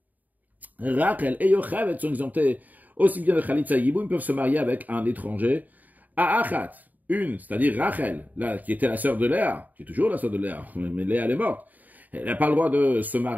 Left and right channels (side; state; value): left; late; 0.081 ms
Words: Rachel et Yocheved, sont exemptées aussi bien de Chalitza Yiboum, ils peuvent se marier avec un étranger. À Achat, une, c'est-à-dire Rachel, là, qui était la sœur de Léa, qui est toujours la sœur de Léa, mais Léa, elle est morte. Elle n'a pas le droit de se